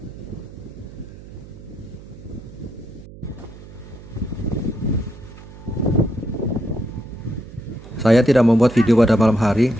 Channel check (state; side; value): noise; right; hum, 17 dB below the sound